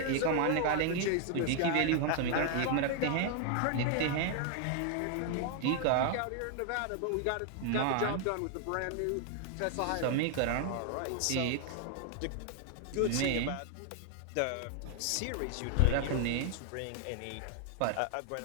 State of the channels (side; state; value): both; different; correlation 0.00